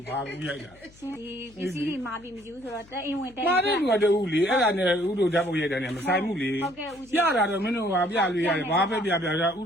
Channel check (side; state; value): left; noise; hum, 25 dB below the sound